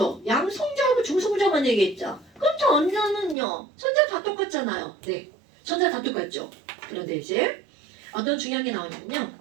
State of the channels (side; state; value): left; drops out; at 3.4 s